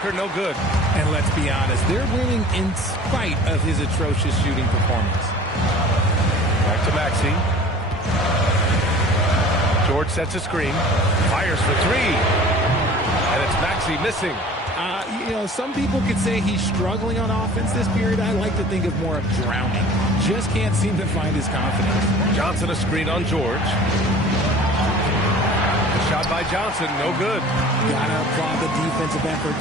no good. And let's be honest, they're winning in spite of his atrocious shooting performance. Back to Maxey. George sets a screen, fires for 3, and it's Maxey missing. Some people could say he's struggling on offense this period. I like to think of more of drowning. Just can't seem to find his confidence. Johnson a screen on George. The shot by Johnson, no good. Gotta applaud the defensive effort.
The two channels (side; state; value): both; normal; correlation 0.45